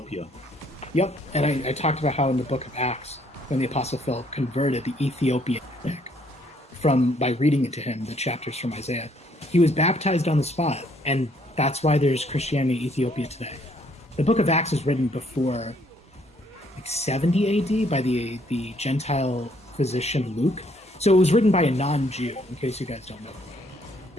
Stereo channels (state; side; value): normal; both; correlation 0.66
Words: Yep, and I talked about how in the Book of Acts, when the Apostle Philip converted the Ethiopian by reading it to him, the chapters from Isaiah, he was baptized on the spot, and that's why there's Christianity in Ethiopia today. The Book of Acts is written before like 70 AD by the Gentile physician Luke. So it was written by a non-Jew, in case you guys don't know.